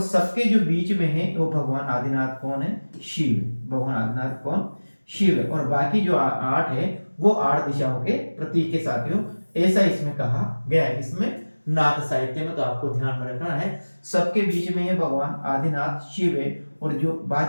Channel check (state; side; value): inverted; both; correlation -1.00